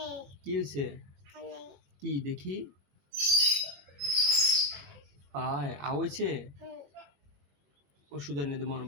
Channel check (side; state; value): left; late; 21 ms